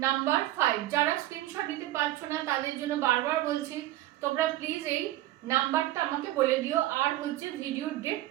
নাম্বার 5। যারা স্ক্রিনশট দিতে পারছো না তাদের জন্য বারবার বলছি, তোমরা প্লিজ এই নাম্বারটা আমাকে বলে দিও, আর হচ্ছে ভিডিওর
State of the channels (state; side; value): quieter; left; 15.5 dB